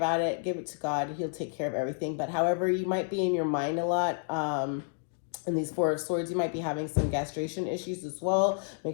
it. Give it to God. He'll take care of everything. But however, you might be in your mind a lot. In these Four of Swords, you might be having some gastration issues as well.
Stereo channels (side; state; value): right; silent; digital silence